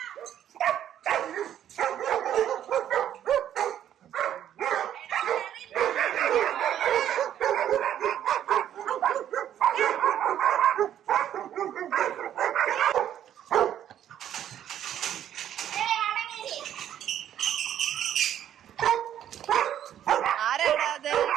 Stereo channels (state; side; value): quieter; left; 10.6 dB